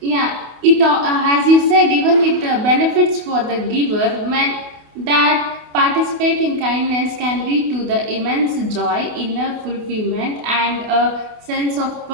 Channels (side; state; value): left; late; 28 ms